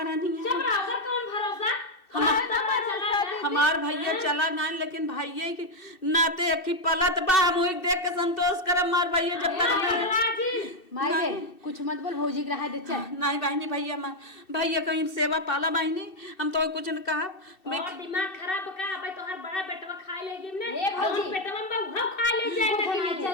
नहीं है चुप रहो कर कौन भरोसा हमार भैया चला ना लेकिन भैया के नाते की पलत बा हम देख के संतोष करम मार भैया जब तक अल्लाह जी माई रे कुछ मत बोल भौजी के रहा दे चल। नहीं बहनी भैया भैया कहीं सेवा पाला बहनी हम तो कुछ न कहा और दिमाग खराब का भाई तोहर बड़ा बेटवा खा ले गिन ने ए भौजी। पेटवा में बहु खा ले जाए चल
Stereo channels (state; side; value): late; right; 2.6 ms